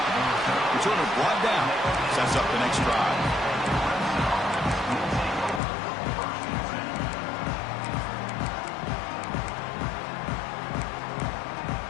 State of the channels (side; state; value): right; drops out; at 5.6 s